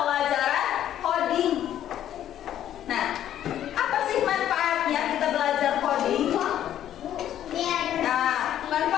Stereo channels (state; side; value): quieter; right; 11.2 dB